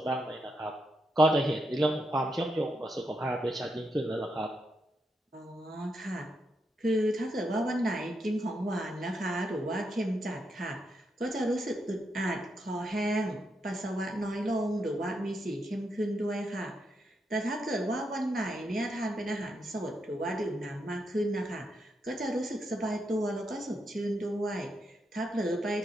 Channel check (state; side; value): normal; both; correlation 0.82